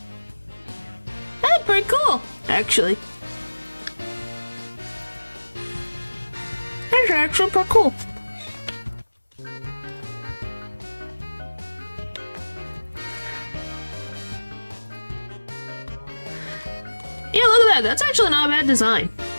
That's pretty cool, actually. That's actually pretty cool. Yeah, look at that. That's actually not a bad design.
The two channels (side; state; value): both; inverted; correlation -1.00